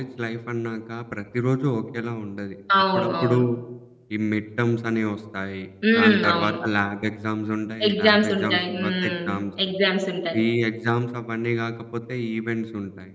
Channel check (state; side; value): identical; both; correlation 1.00